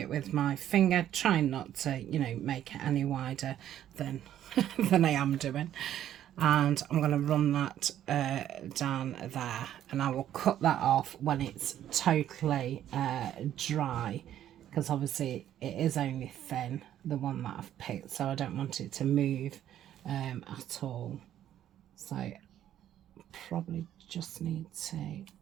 with my finger, trying not to, you know, make it any wider than than I am doing. And I'm going to run that down there, and I will cut that off when it's totally dry, because obviously it is only thin, the one that I've picked, so I don't want it to move at all. So probably just need to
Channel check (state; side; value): quieter; left; 11.3 dB